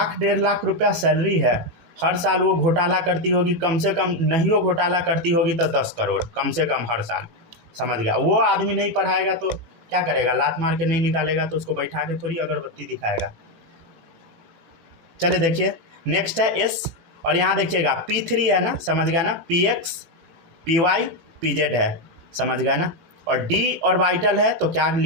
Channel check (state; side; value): late; left; 18 ms